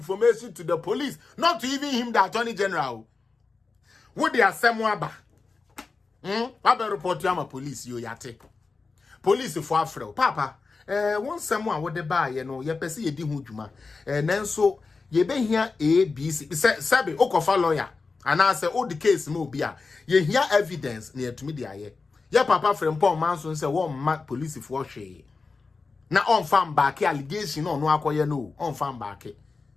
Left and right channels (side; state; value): right; quieter; 4.2 dB